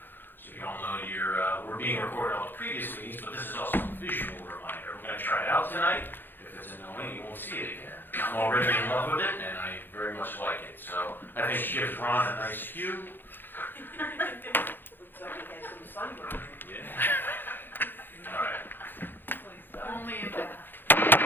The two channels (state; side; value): late; right; 0.096 ms